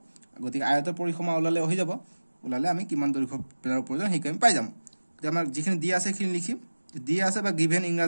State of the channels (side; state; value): both; inverted; correlation -1.00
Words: গতিকে আয়তৰ পৰিসীমা ওলালে হৈ যাব ওলালে আমি কিমান দৈৰ্ঘ্য বেৰৰ প্ৰয়োজন হেই আমি পাই যাম গতিকে আমাৰ যিখিনি দিয়া আছে সেইখিনি লিখিম দিয়া আছে বা গিভেন